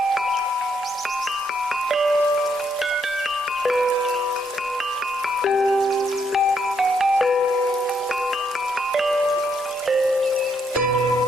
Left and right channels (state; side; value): normal; both; correlation 0.74